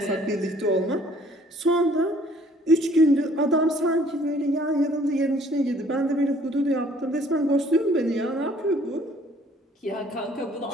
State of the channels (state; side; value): normal; both; correlation 0.58